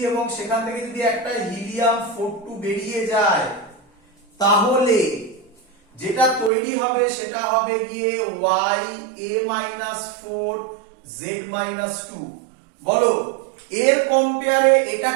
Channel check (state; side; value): drops out; left; at 6.5 s